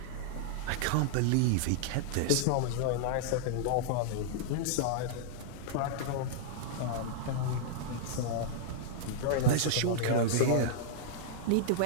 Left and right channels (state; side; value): different; both; correlation -0.01